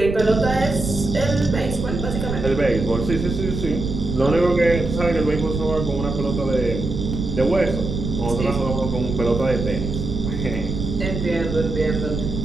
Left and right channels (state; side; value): noise; right; rumble, 5 dB below the sound